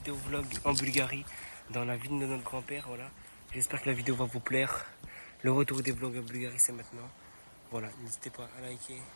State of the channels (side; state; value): both; inverted; correlation -1.00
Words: vlog en Bulgarie, dans la ville de notre grand-père, voilà. J'espère que la vidéo va vous plaire. Le retour des vlogs en Bulgarie, c'est maintenant. Voilà, n'hésitez pas à liker,